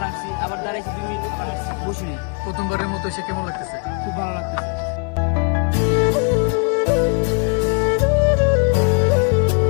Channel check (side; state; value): right; quieter; 38.6 dB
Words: আসছি, আবার দাঁড়াইছি 2 মিনিট, আবার আসছি, বসি নেই। প্রথমবারের মতো এসে কেমন লাগতেছে? খুব ভালো লাগতেছে।